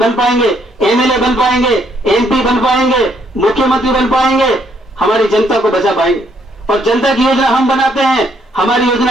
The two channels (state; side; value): normal; both; correlation 0.70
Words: बन पाएंगे, एमएलए बन पाएंगे, एमपी बन पाएंगे, मुख्यमंत्री बन पाएंगे, हमारी जनता को बचा पाएंगे। और जनता की योजना हम बनाते हैं, हमारी